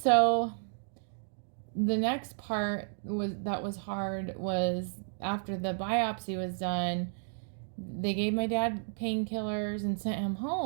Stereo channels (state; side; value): silent; left; digital silence